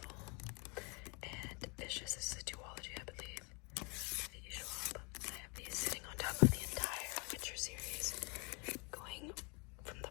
And Vicious is a duology, I believe. V.E. Schwab. I have these sitting on top of the entire Witcher series, going from the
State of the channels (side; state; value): right; quieter; 31.5 dB